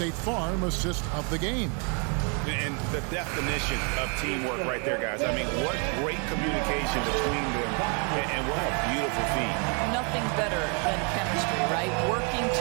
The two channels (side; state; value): left; quieter; 37.1 dB